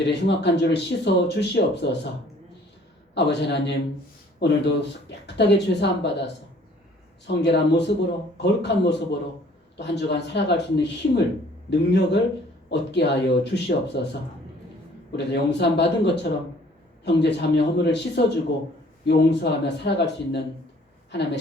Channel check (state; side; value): normal; both; correlation 0.56